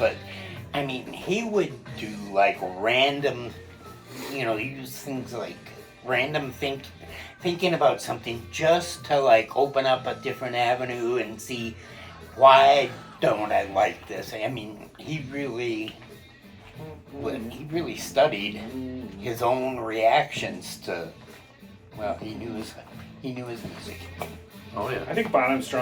I mean, he would do like random, use things like random thinking about something just to like open up a different avenue and see why don't I like this. I mean, he really studied his own reactions to. Well, he knew his music. Oh yeah, I think Bonham's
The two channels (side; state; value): both; identical; correlation 1.00